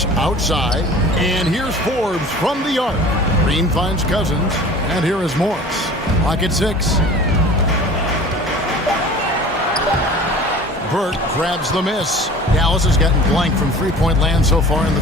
outside. And here's Forbes from the arc. Green finds Cousins. And here is Morris. Lock at 6. Burke grabs the miss. Dallas has gotten blank from three-point land so far in the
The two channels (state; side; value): normal; both; correlation 0.43